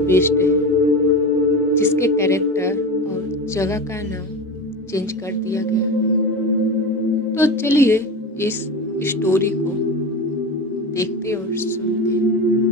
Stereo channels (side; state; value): both; normal; correlation 0.25